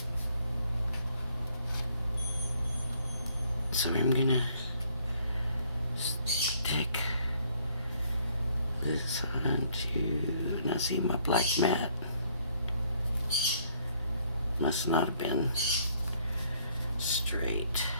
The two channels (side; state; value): both; inverted; correlation -0.64